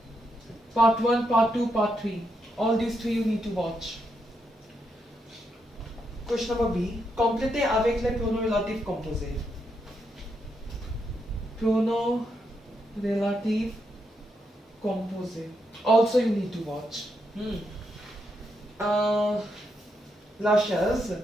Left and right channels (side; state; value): both; normal; correlation 0.81